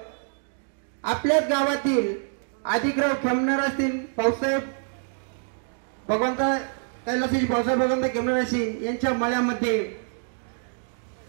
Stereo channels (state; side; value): silent; left; digital silence